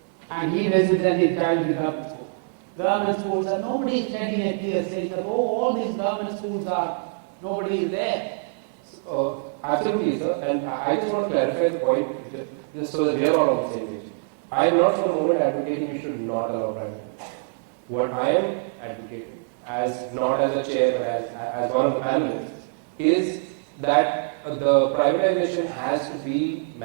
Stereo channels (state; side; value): silent; left; digital silence